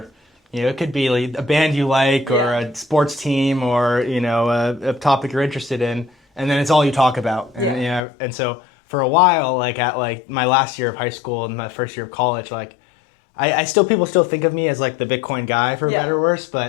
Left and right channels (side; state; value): right; drops out; at 8.0 s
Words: it could be like a band you like, or a sports team, or, a topic you're interested in, and then it's all you talk about. And, and so for a while, like at like my last year of high school and my first year of college, like people still think of me as like the Bitcoin guy, for better or worse,